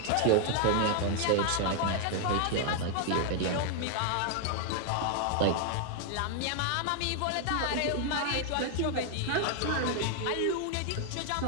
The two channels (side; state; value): both; different; correlation 0.00